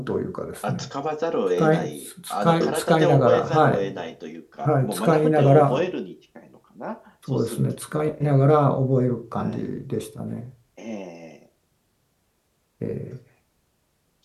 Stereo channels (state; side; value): identical; both; correlation 1.00